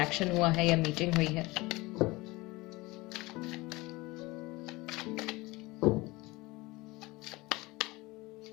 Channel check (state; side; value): quieter; right; 21.9 dB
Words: हुआ है या मीटिंग हुई है।